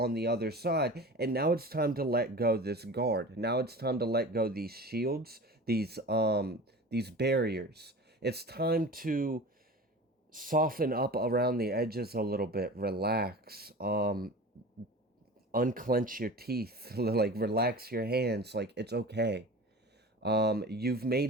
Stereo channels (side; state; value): both; normal; correlation 0.36